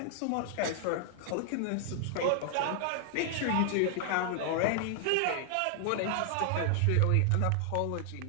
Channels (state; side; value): different; both; correlation 0.00